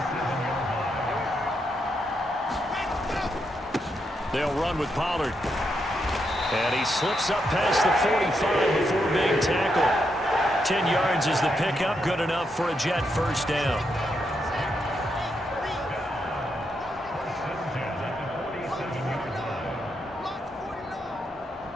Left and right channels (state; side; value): normal; both; correlation 0.81